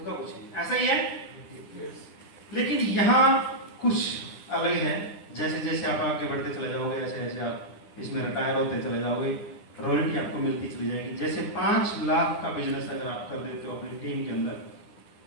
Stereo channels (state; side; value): late; right; 9.8 ms